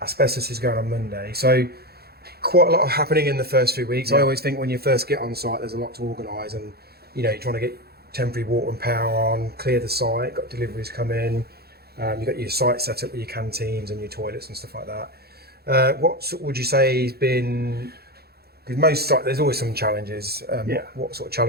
Asbestos is going on Monday, so quite a lot happening in the first few weeks. I always think when you first get on site, there's a lot to organise, and you're trying to get temporary water and power on, clear the site, got deliveries come in, You've got your site set up with your canteens and your toilets and stuff like that. Would you say has been? Because most sites, there's always some challenges. What sort of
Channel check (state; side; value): late; left; 0.46 ms